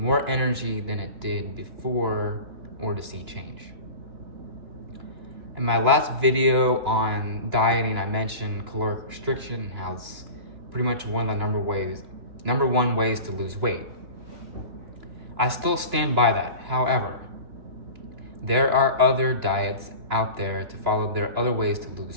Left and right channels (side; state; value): left; late; 2.9 ms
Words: more energy than it did before or to see change. In my last video on dieting, I mentioned caloric restriction and how it's pretty much one of the number one ways to lose weight. I still stand by that. However, there are other diets out there to follow. There are other ways to